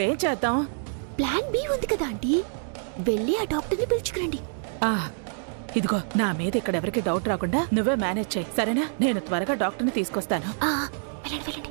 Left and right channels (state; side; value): silent; left; digital silence